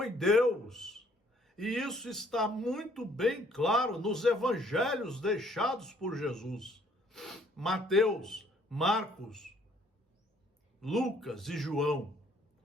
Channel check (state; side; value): normal; both; correlation 0.62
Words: Deus. E isso está muito bem claro nos evangelhos deixados por Jesus. Mateus, Marcos, Lucas e João,